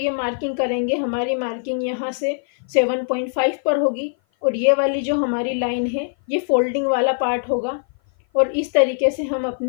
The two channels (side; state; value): right; silent; 56 dB below the other